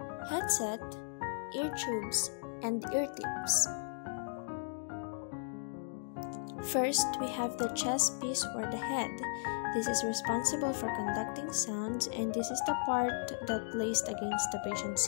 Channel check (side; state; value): right; silent; digital silence